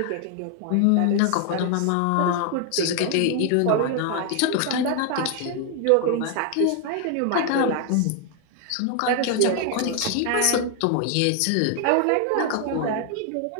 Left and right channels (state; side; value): different; both; correlation 0.00